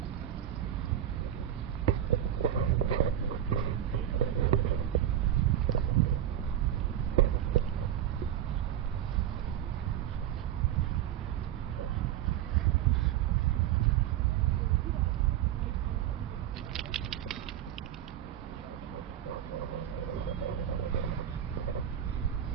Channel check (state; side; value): quieter; left; 10.9 dB